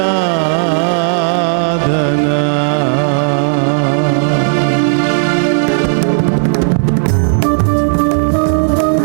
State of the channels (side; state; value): left; silent; digital silence